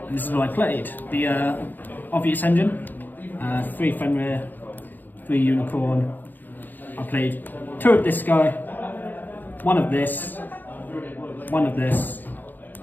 And this is what I played. The obvious engine, 3 Fenrir, 3 Unicorn. I played 2 of this guy, 1 of this, 1 of this,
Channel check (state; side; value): late; right; 0.087 ms